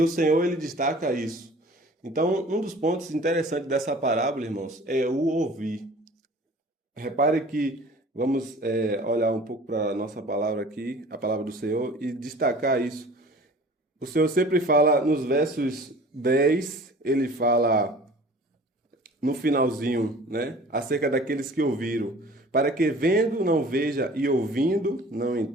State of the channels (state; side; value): normal; both; correlation 0.46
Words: o Senhor ele destaca isso. Então, um dos pontos interessantes dessa parábola, irmãos, é o ouvir. Repare que vamos olhar um pouco para a nossa palavra aqui, a palavra do Senhor, e destacar isso. O Senhor sempre fala nos versos 10, ele fala no finalzinho, né, acerca daqueles que ouviram, para que vendo não veja e ouvindo não